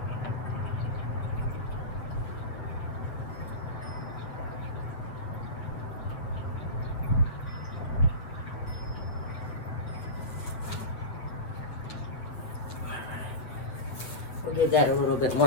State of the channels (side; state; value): right; late; 8.3 ms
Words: We'll give that a little bit